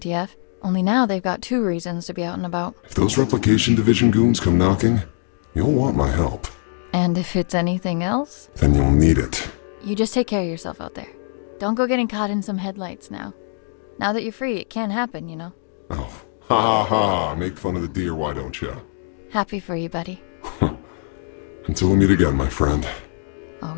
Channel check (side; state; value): right; silent; 64 dB below the other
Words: Only now they've got 2 reasons to be out and about. If those replication division goons come knocking, you'll want my help. And if it's anything else? Then you'll need it. You just take care of yourself out there. Don't go getting caught in some headlights now. Now that you're free, it can happen, you know. Oh, ha ha ha. Make fun of the deer, why don't you? Happy for you, buddy. Until we meet again, my friend.